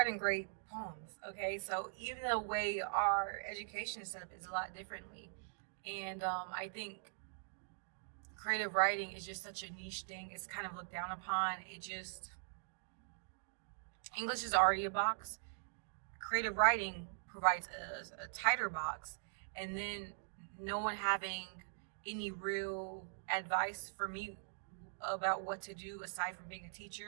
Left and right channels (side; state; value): left; silent; digital silence